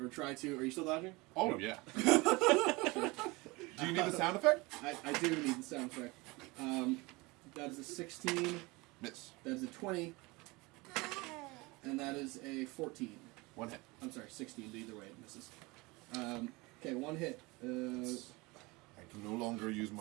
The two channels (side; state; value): left; quieter; 24.2 dB